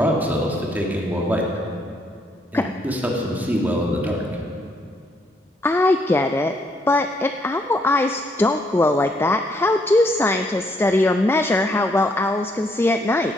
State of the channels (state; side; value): normal; both; correlation 0.72